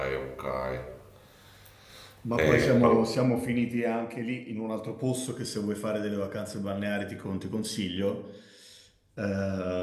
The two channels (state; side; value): identical; both; correlation 1.00